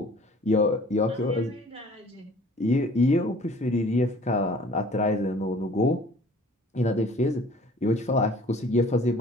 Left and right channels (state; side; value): normal; both; correlation 0.51